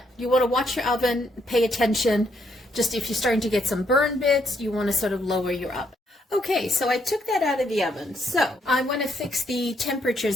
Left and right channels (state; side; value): normal; both; correlation 0.74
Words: you want to watch your oven, pay attention. Just if you're starting to get some burn bits, you want to sort of lower your oven. Okay, so I took that out of the oven. So I want to fix the